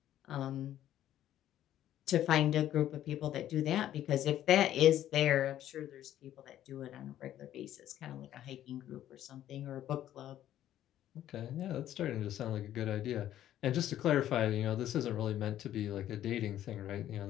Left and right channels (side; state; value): right; quieter; 12.1 dB